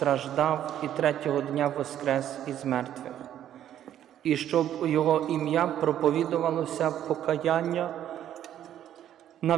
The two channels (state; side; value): quieter; left; 11.0 dB